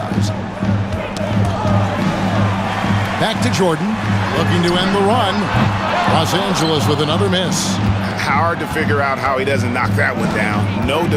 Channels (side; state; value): both; identical; correlation 1.00